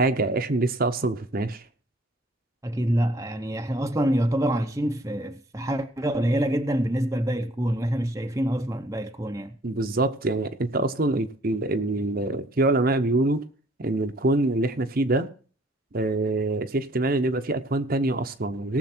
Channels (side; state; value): both; normal; correlation 0.58